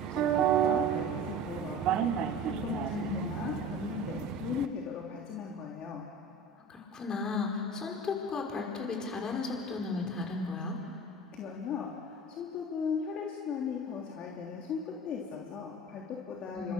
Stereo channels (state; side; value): normal; both; correlation 0.37